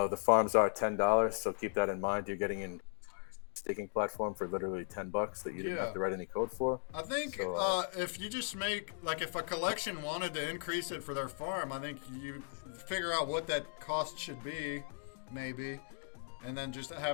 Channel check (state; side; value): silent; right; digital silence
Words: farms are $10, so keep that in mind. You're getting an staking platform for literally $10 that you didn't have to write any code for. I think if you just make, like, if a collection wanted to increase it for their farm, I think you figure out what that cost should be, maybe, and then just